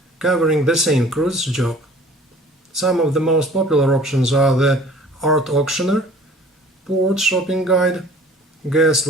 covering the same cruise job. Some of the most popular options are the art auctioneer, port shopping guide, guest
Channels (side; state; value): both; normal; correlation 0.49